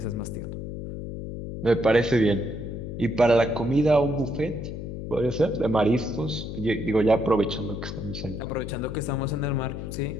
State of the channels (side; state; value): left; noise; hum, 7 dB below the sound